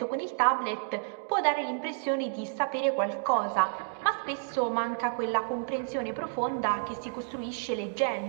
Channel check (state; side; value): silent; left; digital silence